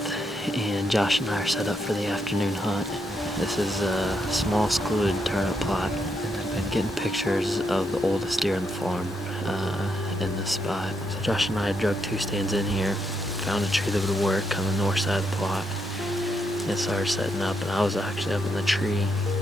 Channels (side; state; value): both; normal; correlation 0.79